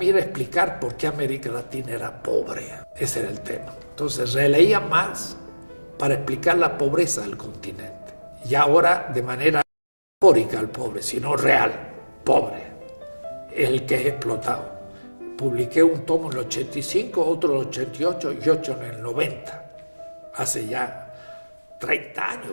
era explicar por qué América Latina era pobre. Ese era el tema. Entonces releía Marx para explicar la pobreza del continente. Y ahora de manera metafórica el pobre, sino real, pobre, el que es explotado. Publiqué un tomo en el 85, otro en el 88 y 8 en el 90. Hace ya 30 años.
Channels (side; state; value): both; inverted; correlation -1.00